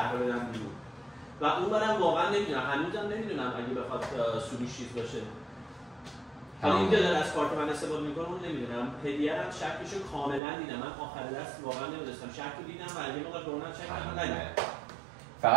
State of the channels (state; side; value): drops out; left; at 10.4 s